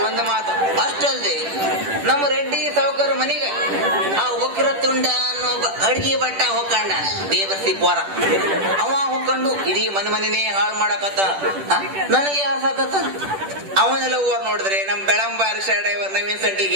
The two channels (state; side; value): late; left; 10 ms